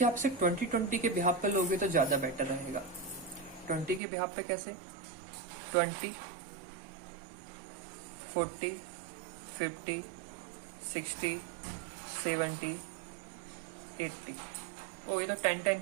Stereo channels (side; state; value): left; drops out; at 4.0 s